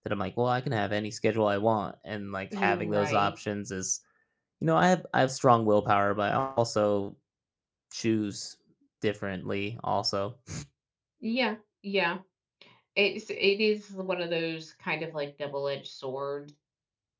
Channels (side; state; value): both; identical; correlation 1.00